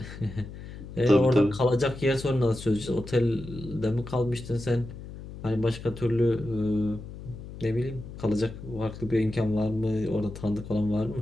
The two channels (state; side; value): noise; left; hum, 12 dB below the sound